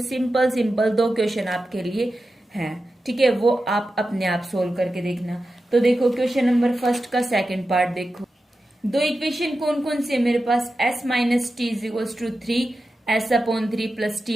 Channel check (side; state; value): both; normal; correlation 0.92